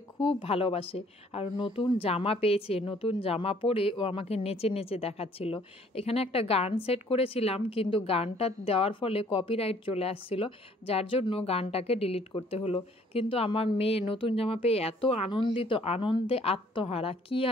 খুব ভালোবাসে আর নতুন জামা পেয়েছে, নতুন জামা পরে ও আমাকে নেচে নেচে দেখাচ্ছিল। এখানে একটা গান সেট করেছিলাম কিন্তু গানটা দেওয়ার ফলে কপিরাইট চলে আসছিল, যার জন্য গানটাকে ডিলিট করতে হলো। কিন্তু আমার মেয়ে নতুন জামা পেয়ে এত আনন্দে আত্মহারা, কি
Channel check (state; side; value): normal; both; correlation 0.59